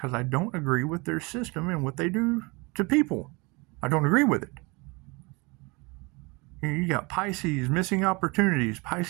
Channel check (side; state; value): left; quieter; 27.1 dB